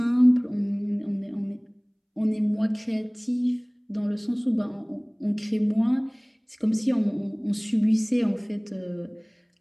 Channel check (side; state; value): both; identical; correlation 1.00